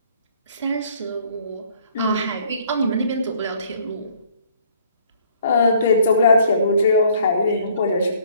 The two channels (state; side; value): inverted; both; correlation -0.60